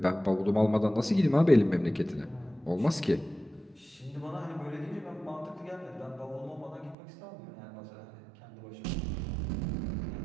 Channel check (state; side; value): drops out; left; at 7.0 s